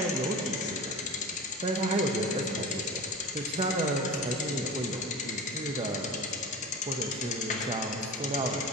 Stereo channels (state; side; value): normal; both; correlation 0.31